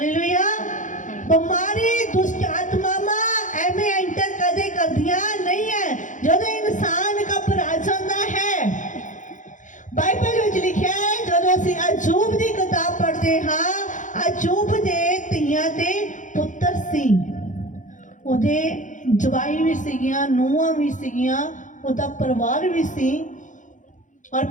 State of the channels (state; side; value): late; right; 0.37 ms